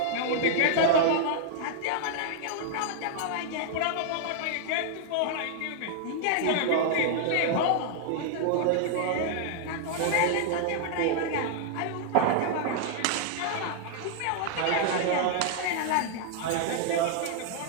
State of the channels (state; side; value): different; both; correlation -0.01